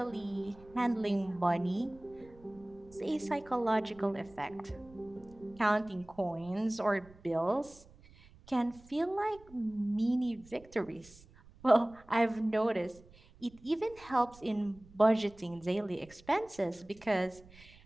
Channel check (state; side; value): noise; right; rumble, 24 dB below the sound